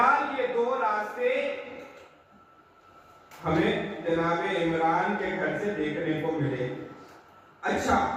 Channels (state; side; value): identical; both; correlation 1.00